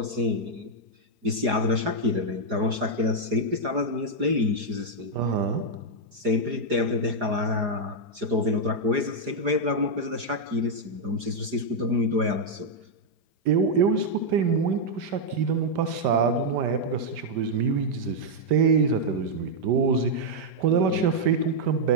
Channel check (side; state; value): left; late; 4.9 ms